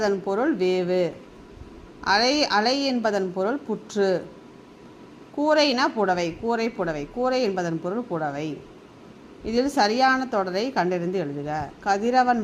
பொருள் வேவு. அலை அலை என்பதன் பொருள் புற்று. கூரைனா புடவை, கூரை புடவை. கூரை என்பதன் பொருள் புடவை. இதில் சரியான தொடரை கண்டறிந்து எழுதுக. கதிரவன்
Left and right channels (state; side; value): identical; both; correlation 1.00